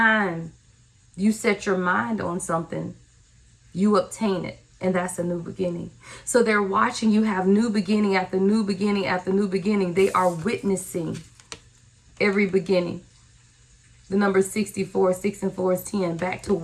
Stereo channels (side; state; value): both; identical; correlation 1.00